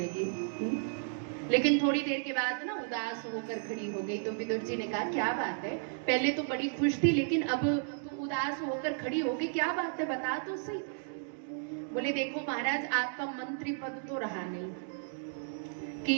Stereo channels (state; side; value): silent; left; digital silence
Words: लेकिन थोड़ी देर के बाद ना उदास होकर खड़ी हो गई। तो विदुर जी ने कहा क्या बात है, पहले तो बड़ी खुश थी लेकिन अब उदास होकर खड़ी हो गई, क्या बात है बता तो सही। बोले देखो महाराज, आपका मंत्री पद तो रहा नहीं कि